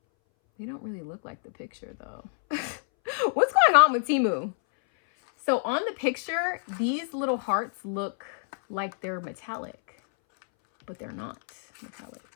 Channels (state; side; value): silent; right; 60 dB below the other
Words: They don't really look like the picture though. What's going on with Temu? So on the picture, these little hearts look like they're metallic, but they're not metallic.